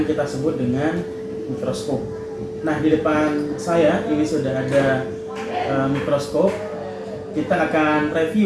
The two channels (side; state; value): both; identical; correlation 1.00